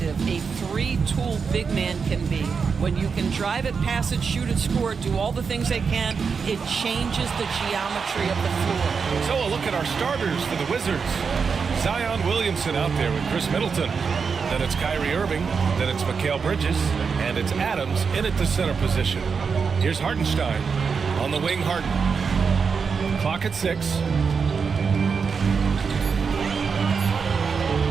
a three-tool big man can be. When you can drive it, pass it, shoot it, score it, do all the things they can, it changes the geometry of the floor. So a look at our starters for the Wizards. Zion Williamson out there with Chris Middleton. Then it's Kyrie Irving, then it's Mikal Bridges, and it's Adams in at the center position. Here's Hartenstein on the wing. Harden. Clock at 6.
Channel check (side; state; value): left; quieter; 5.6 dB